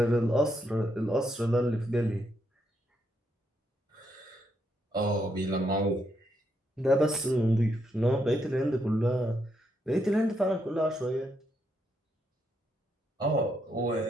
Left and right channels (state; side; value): normal; both; correlation 0.78